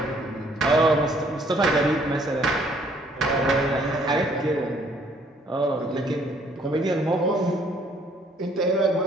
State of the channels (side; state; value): both; normal; correlation 0.63